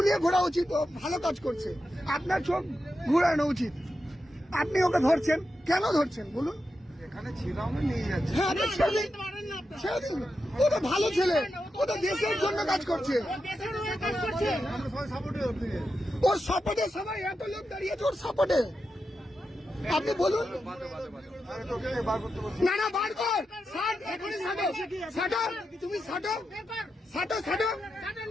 ঘোরা উচিত, ও ভালো কাজ করছে, আপনার চোখ ঘুরানো উচিত। আপনি ওকে ধরছেন কেন? ধরছেন বলুন? এখানে ছিলাম নিয়ে যাচ্ছে। হ্যাঁ ও তো ভালো ছেলে, ও তো দেশের জন্য কাজ করছে। ওর সাপোর্টে সবাই এত লোক দাঁড়িয়েছে, ওর সাপোর্টে। আপনি বলুন না না বার কর, ষাট এখনই ছাটো, ছাটো তুমি ছাটো, ছাটো ছাটো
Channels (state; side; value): normal; both; correlation 0.88